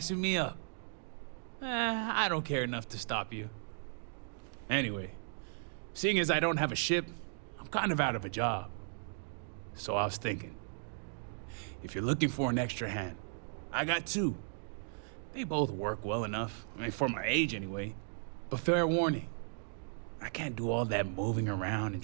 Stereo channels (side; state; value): left; silent; digital silence